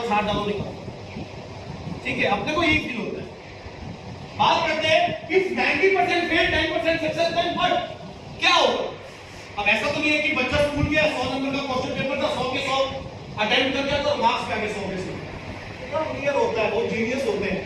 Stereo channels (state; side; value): identical; both; correlation 1.00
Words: हाथ डालो निकलो, ठीक है, अपने को यही फील होता है। बात करते हैं कि 90% फेल 10% सक्सेस, देन व्हाट? क्या होगा? अब ऐसा तो नहीं है कि बच्चा स्कूल गया, 100 नंबर का क्वेश्चन पेपर था, 100 के 100 अटेम्प्ट कर दिया तो मार्क्स पे आ गए 100 में से। इतना क्लियर होता है, बहुत जीनियस होते हैं